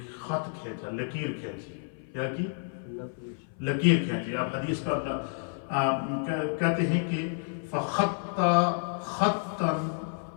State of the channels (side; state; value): right; silent; 58 dB below the other